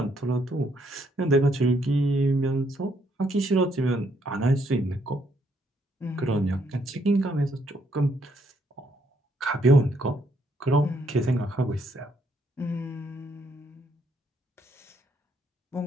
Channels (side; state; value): both; normal; correlation 0.71